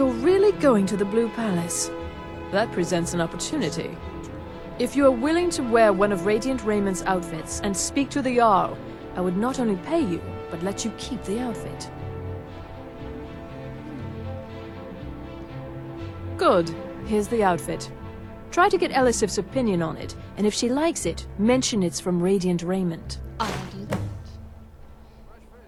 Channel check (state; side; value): identical; both; correlation 1.00